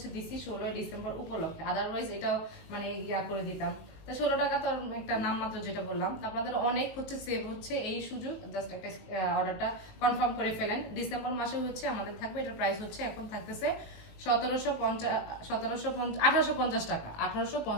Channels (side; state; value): right; late; 19 ms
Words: দিচ্ছি 16 ডিসেম্বর উপলক্ষে, আদারওয়াইজ এটাও মানে ইয়া করে দিতাম। তা 16 টাকা তো একটা নামমাত্র যেটা বললাম। তো আপনাদের অনেক হচ্ছে সেভ হচ্ছে এই সুযোগ, জাস্ট একটা অর্ডারটা কনফার্ম করে ফেলেন। ডিসেম্বর মাসে হচ্ছে আমাদের থাকবে, এটার প্রাইস হচ্ছে এখন থাকতেছে 1850 টাকা,